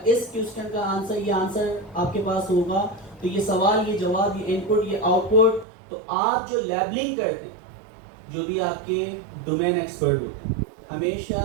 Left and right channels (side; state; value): left; drops out; at 5.7 s